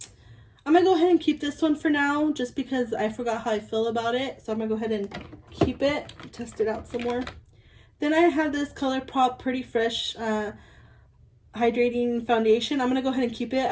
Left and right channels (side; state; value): both; identical; correlation 1.00